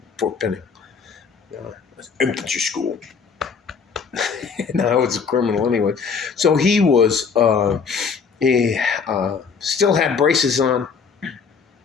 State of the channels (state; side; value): quieter; right; 5.8 dB